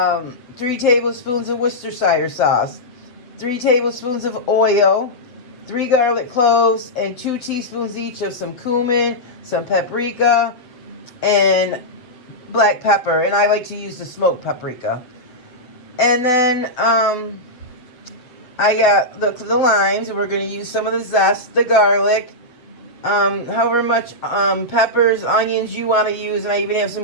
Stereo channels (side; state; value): right; late; 8.0 ms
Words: tablespoons of Worcestershire sauce. 3 tablespoons of oil, 3 garlic cloves, and 2 teaspoons each of some cumin, some paprika, and black pepper. And I like to use the smoked paprika. And then I got the limes, and we're going to use some of the zest, the garlic, however much peppers, onions you want to use, and I even have